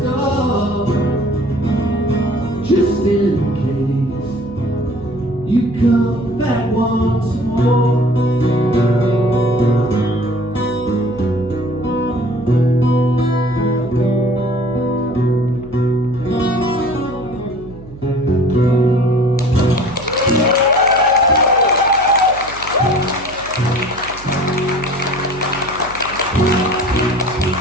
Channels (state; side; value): noise; right; hum, 18 dB below the sound